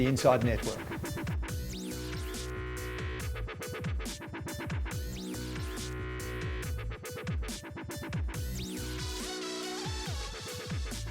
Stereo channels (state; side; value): identical; both; correlation 1.00